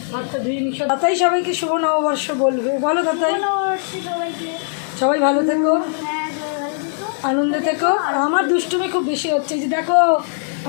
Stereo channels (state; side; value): silent; right; 64 dB below the other